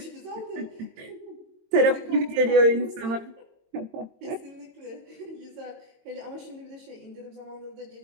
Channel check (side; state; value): left; late; 22 ms